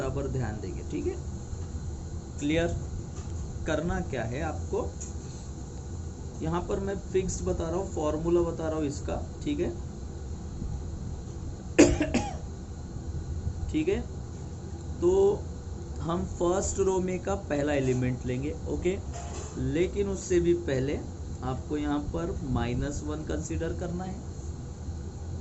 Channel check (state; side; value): identical; both; correlation 1.00